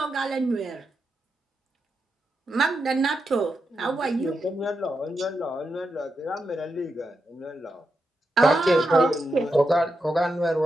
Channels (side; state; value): both; normal; correlation 0.86